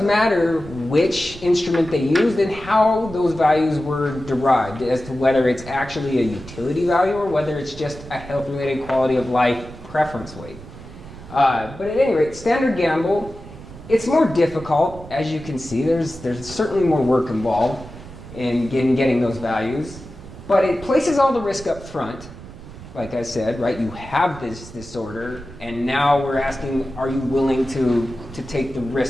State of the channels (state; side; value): noise; right; rumble, 16 dB below the sound